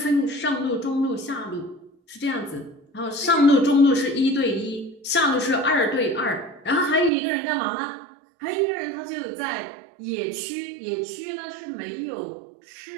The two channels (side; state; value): left; drops out; at 7.1 s